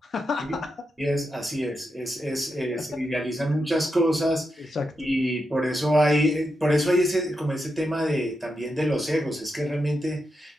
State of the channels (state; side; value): normal; both; correlation 0.86